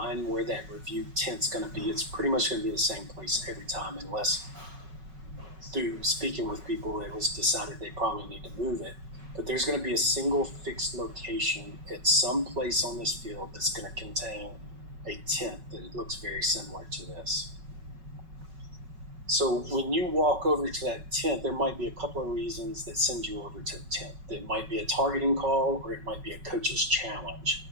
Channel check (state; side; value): late; left; 5.3 ms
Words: where that review tent's going to be, it's pretty much going to be the same place every time, unless through speaking with people, it was decided they probably need to move it. But there's going to be a single fixed location at some place on this field that's going to contain a tent that looks very similar to this. So when you walk over to that tent, there might be a couple of reasons that send you over to the tent. It might be a targeting call, or it might be a coach's challenge.